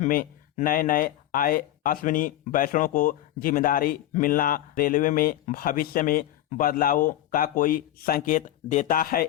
में नए आए अश्विनी वैष्णव को जिम्मेदारी मिलना रेलवे में भविष्य में बदलावों का कोई संकेत देता है?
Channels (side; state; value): right; quieter; 13.4 dB